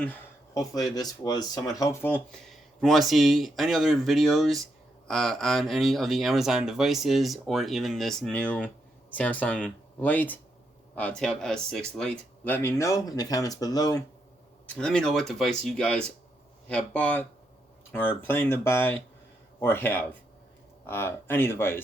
Hopefully this was somewhat helpful. If you want to see any other videos on any of the Amazon devices or even this new Samsung Lite, Tab S6 Lite. Let me know in the comments below. Let me know what device you guys have bought or planning to buy or have. Any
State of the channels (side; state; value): both; normal; correlation 0.80